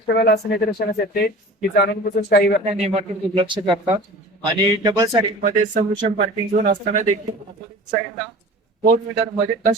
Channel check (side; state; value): both; normal; correlation 0.40